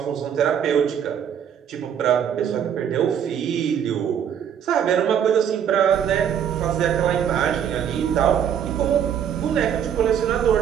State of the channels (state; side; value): quieter; left; 8.8 dB